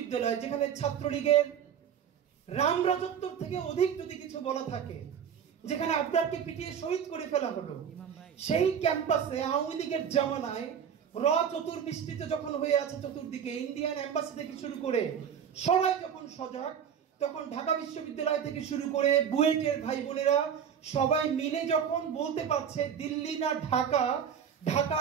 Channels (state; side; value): quieter; left; 8.1 dB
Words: যেখানে ছাত্রলীগের রাম রাজত্ব থেকে অধিক যদি কিছু বলা থাকে, যেখানে আবরারকে পিটিয়ে শহীদ করে ফেলা হলো, সেই ক্যাম্পাসে আওয়ামী লীগের জামানায় চতুর্বৃষ্টিতে যখন হয়ে আছে চতুর্দিকে, ইন্ডিয়ান এম্বাসি থেকে শুরু করে সবাই যখন সজাগ, তখন ঢাকা বিশ্ববিদ্যালয় থেকে শুরু করে বুয়েটের ভাই বোনেরা সবাই মিলে যখন বলতে পারছে দিল্লি না ঢাকা, ঢাকা